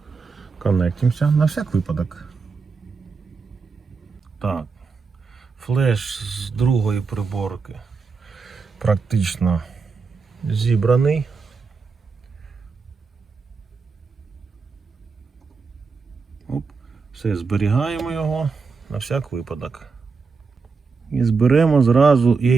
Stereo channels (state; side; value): quieter; left; 4.8 dB